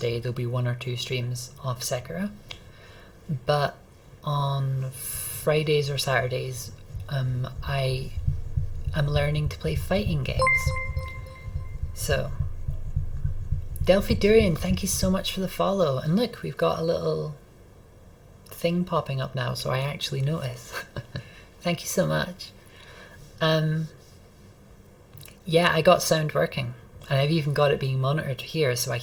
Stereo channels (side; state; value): both; identical; correlation 1.00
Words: there'll be 1 or 2 streams of Sekiro, but on Fridays or Saturdays I'm learning to play fighting games. So Delphi Durian, thank you so much for the follow. And look, we've got a little thing popping up now, so I actually notice. Thank you so much. Yeah, I got sound working, and I've even got it being monitored here, so I